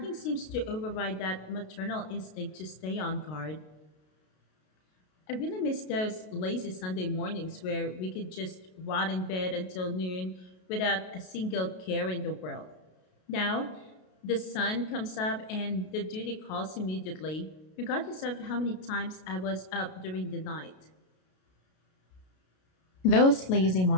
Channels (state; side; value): late; right; 33 ms